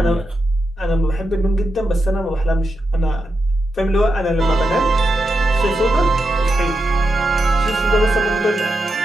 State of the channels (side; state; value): both; normal; correlation 0.87